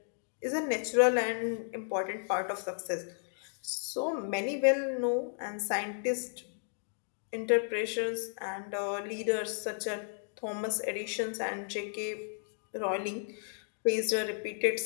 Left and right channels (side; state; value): right; silent; digital silence